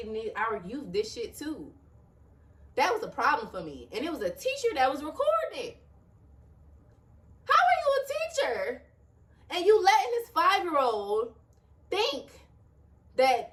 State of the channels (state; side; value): identical; both; correlation 1.00